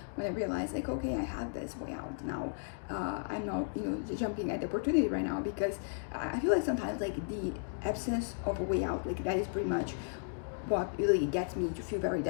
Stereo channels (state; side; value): silent; right; digital silence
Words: when I realized like, okay, I have this way out now. I'm not jumping at the opportunity right now, because I feel like sometimes like the absence of a way out, like that is pretty much what really gets me to feel very